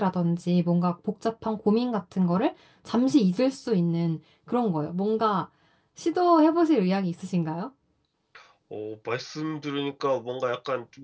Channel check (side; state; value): both; identical; correlation 1.00